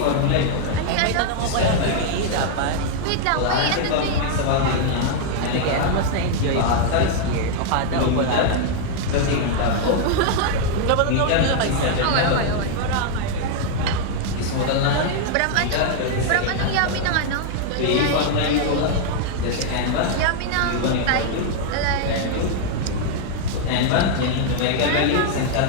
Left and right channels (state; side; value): different; both; correlation 0.00